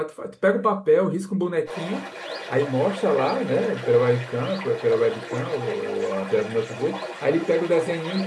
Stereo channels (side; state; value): both; identical; correlation 1.00